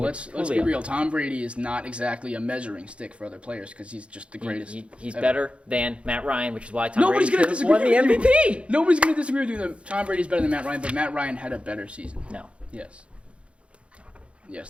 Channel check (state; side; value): late; left; 0.060 ms